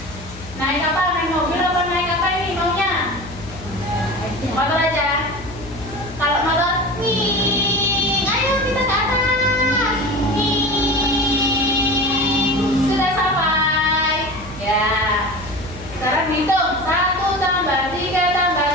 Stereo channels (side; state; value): left; noise; hum, 16 dB below the sound